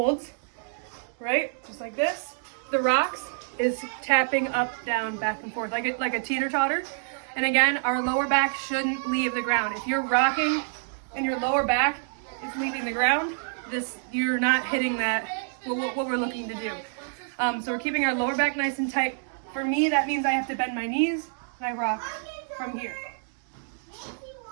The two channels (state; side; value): silent; left; digital silence